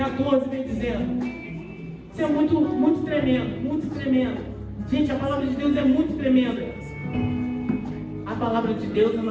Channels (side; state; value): both; identical; correlation 1.00